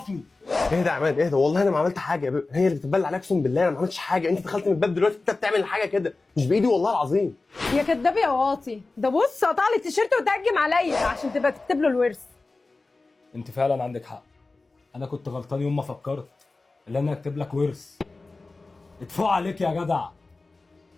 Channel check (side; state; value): right; quieter; 3.5 dB